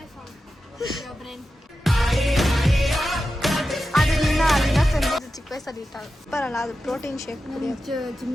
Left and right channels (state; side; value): normal; both; correlation 0.92